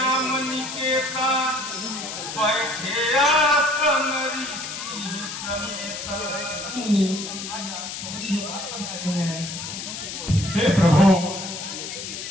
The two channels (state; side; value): noise; left; hiss, 7 dB below the sound